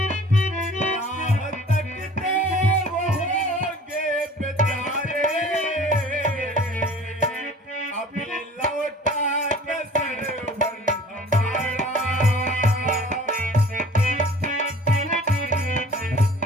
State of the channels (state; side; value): normal; both; correlation 0.47